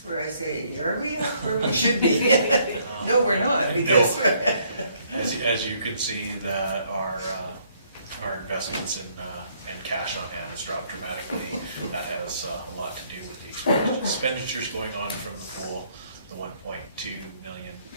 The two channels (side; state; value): both; inverted; correlation -0.67